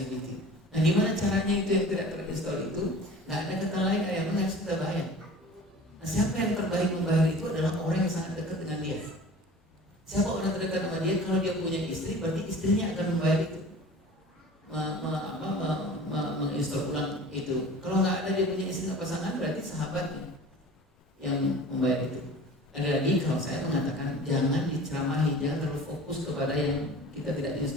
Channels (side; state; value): both; normal; correlation 0.41